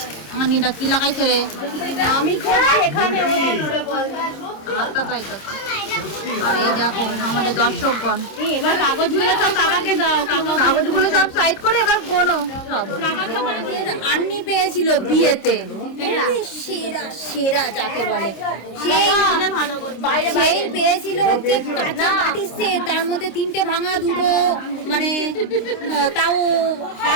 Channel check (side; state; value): right; late; 26 ms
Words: আনিটা কি লাগাইছে রে আমি করছি এখানে আটটা তাই তো আর এই দেখো আমাদের দর্শকগণ এবার কাগজগুলো সব কাকাকে দাও কাগজগুলো সব সাইড করে এবার গোনো সব আন্নি পেয়েছিল বিয়েতে সেরা সেরা যাকে বলে সেই পেয়েছিল হচ্ছে কাঁচা বাটির সেট তার মধ্যে তিনটে ভাঙা দুটো মানে তাও